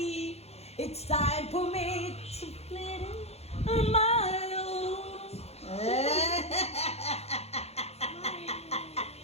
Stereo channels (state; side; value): late; right; 0.30 ms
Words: It's time for me to split it on my own.